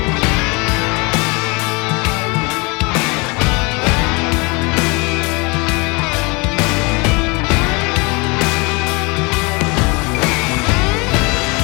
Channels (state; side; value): quieter; right; 28.2 dB